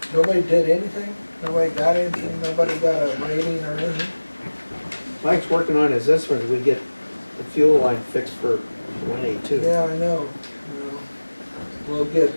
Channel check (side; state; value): both; inverted; correlation -1.00